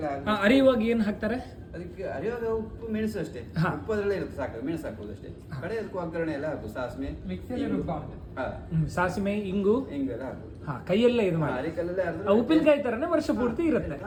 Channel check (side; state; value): both; identical; correlation 1.00